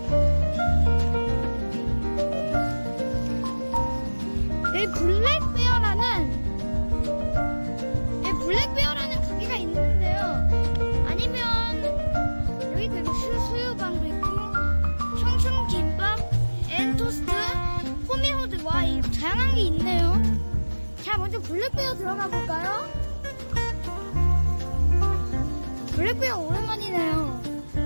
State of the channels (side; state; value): both; inverted; correlation -1.00